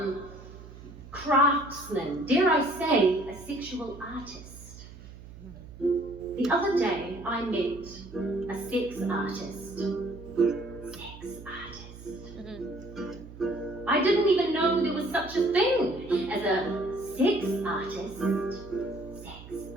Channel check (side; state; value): right; noise; hum, 16 dB below the sound